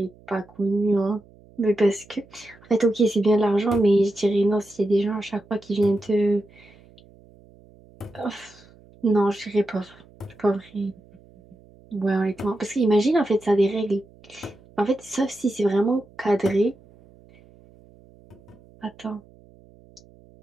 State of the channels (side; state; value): right; noise; hum, 26 dB below the sound